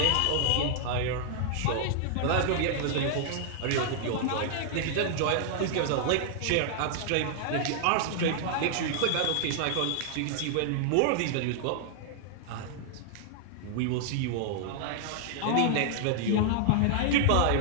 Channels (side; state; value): both; different; correlation 0.00